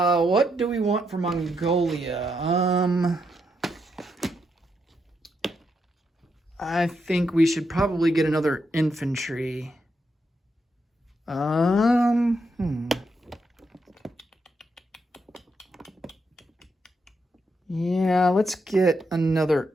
do we want for Mongolia? I think we should probably get another infantry. Yeah, let's get another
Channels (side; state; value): both; normal; correlation 0.81